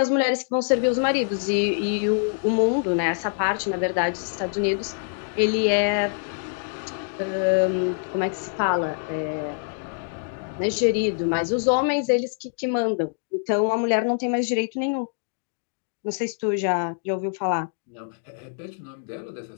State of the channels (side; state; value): right; silent; digital silence